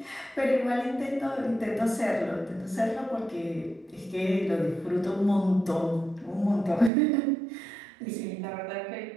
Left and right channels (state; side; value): drops out; left; at 6.9 s